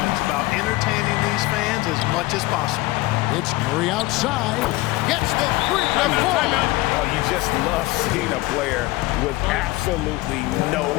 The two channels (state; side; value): quieter; right; 19.9 dB